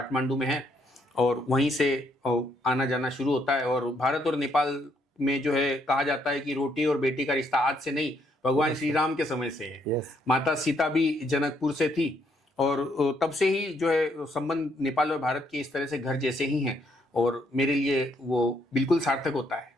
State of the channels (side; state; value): both; normal; correlation 0.72